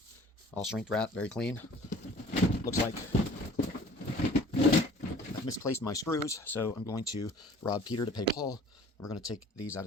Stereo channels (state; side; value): normal; both; correlation 0.49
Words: All shrink wrap, very clean. Looks like I've misplaced my screws, so I'm going to rob Peter to pay Paul. We're going to take these out